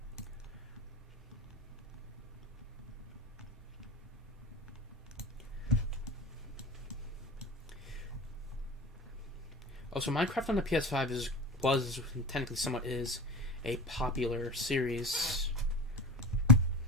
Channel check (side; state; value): both; normal; correlation 0.30